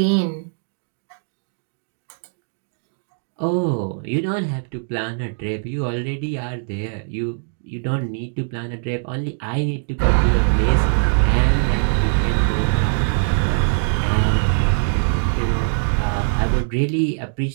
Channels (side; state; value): left; silent; 65 dB below the other